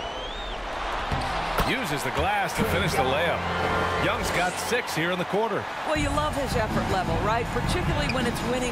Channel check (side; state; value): both; identical; correlation 1.00